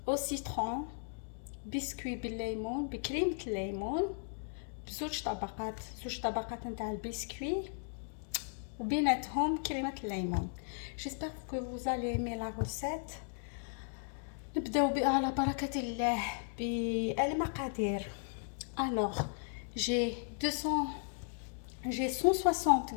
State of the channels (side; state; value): right; silent; digital silence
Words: au citron, biscuit بالليمون بكريمة الليمون بزوج طبقات نتاع البسكوي وبيناتهم كريمة الليمون. J'espère que vous allez aimer la recette. نبداو على بركة الله بالمقادير. Alors, j'ai 160